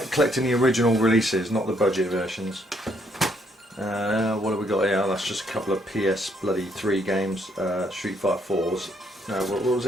collecting the original releases, not the budget versions. What have we got here? That's just a couple of PS3 games. Street Fighter 4s. No, what was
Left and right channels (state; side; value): normal; both; correlation 0.71